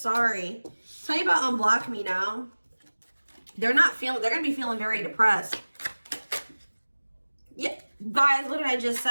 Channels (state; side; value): inverted; both; correlation -1.00